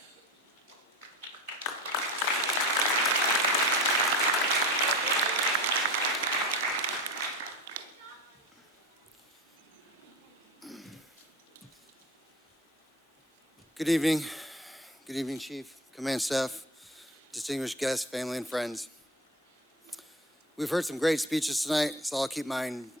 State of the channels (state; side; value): normal; both; correlation 0.30